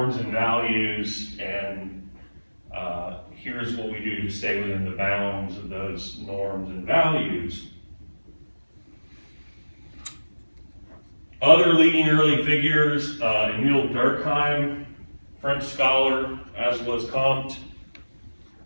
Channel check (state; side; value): inverted; both; correlation -1.00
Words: and values, and here's what we do to stay within the bounds of those norms and values. Other leading early figures, Emile Durkheim, French scholar, as was Comte,